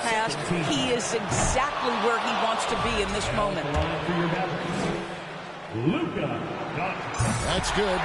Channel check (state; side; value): identical; both; correlation 1.00